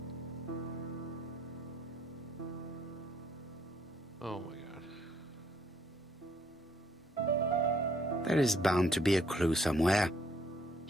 Oh my god. There is bound to be a clue somewhere.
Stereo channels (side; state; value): both; normal; correlation 0.66